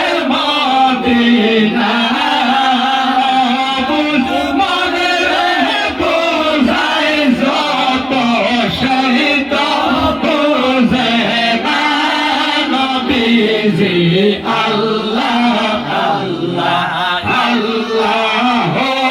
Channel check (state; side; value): identical; both; correlation 1.00